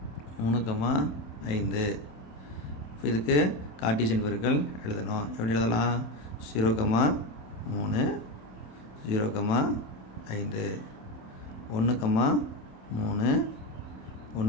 3,5. இப்போ இதுக்கு கார்ட்டீசியன் பெருக்கல் எழுதணும். எப்படி எழுதலாம்? 0,3 0,5 1,3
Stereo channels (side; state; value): right; late; 27 ms